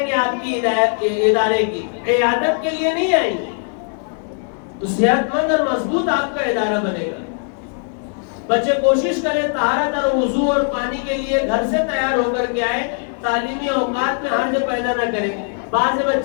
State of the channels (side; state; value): right; silent; 57 dB below the other